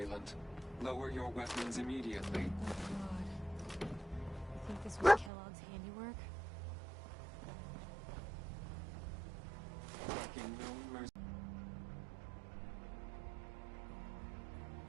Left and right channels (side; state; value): left; drops out; at 5.3 s